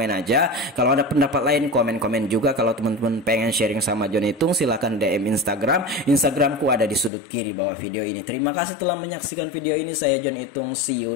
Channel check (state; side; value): drops out; right; at 7.1 s